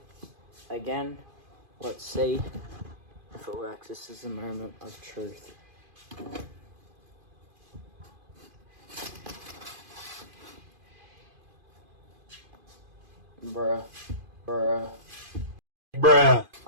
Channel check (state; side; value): late; left; 2.5 ms